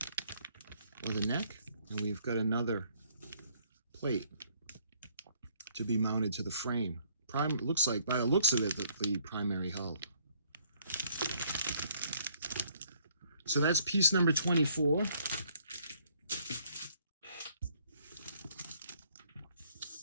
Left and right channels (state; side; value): inverted; both; correlation -0.64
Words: or the neck. And we've got another plate to be mounted to the frame. Looks like, by the looks of it, the primary hull. So that's piece number 24.